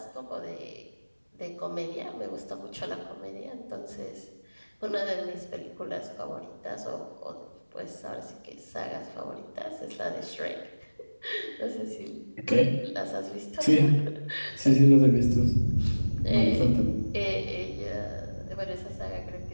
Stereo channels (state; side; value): inverted; both; correlation -1.00